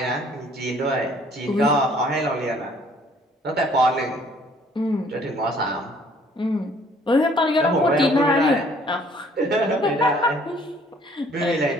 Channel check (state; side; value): normal; both; correlation 0.59